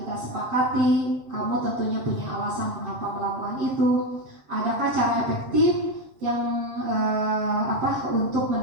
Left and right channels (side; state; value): left; late; 7.4 ms